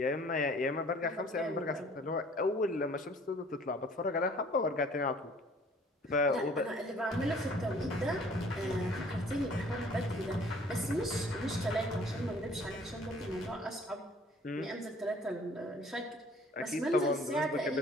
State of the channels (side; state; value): both; normal; correlation 0.54